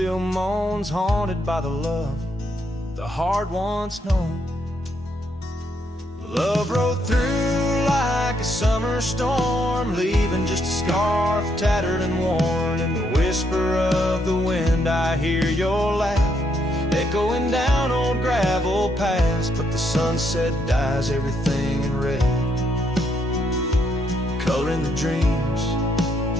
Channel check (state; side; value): normal; both; correlation 0.75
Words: moans, haunted by the love the heart once known. Love rode through like a summer storm, leaving just a scarf tattered and worn. In the whisper of the wind I hear your laugh echoing down old gravel paths. But the sunset dyes everything in red, coloring the dreams